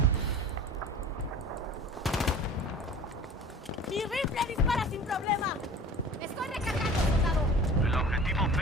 ¡Mi rifle dispara sin problema! ¡Estoy recargando, soldado! El objetivo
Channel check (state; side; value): normal; both; correlation 0.41